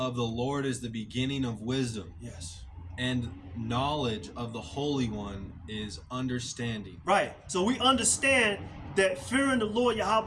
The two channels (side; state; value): both; identical; correlation 1.00